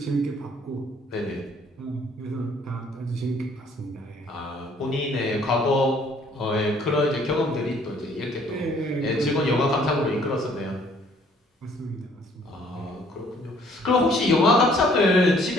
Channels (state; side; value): normal; both; correlation 0.60